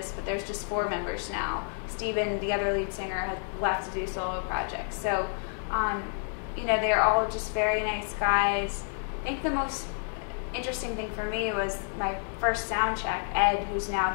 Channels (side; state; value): right; silent; digital silence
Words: but there's just 4 members now. Steven, the other lead singer, has left to do solo projects. So, you know, they're all just very nice guys. I think the most interesting thing for me was my first sound check. Ed, who's now